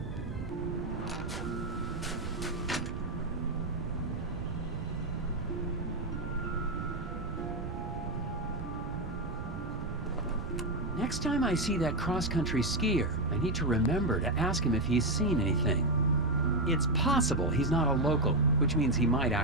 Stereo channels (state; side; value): noise; right; rumble, 7 dB below the sound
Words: Next time I see that cross-country skier, I need to remember to ask him if he's seen anything. It's possible he's not a local, which means he might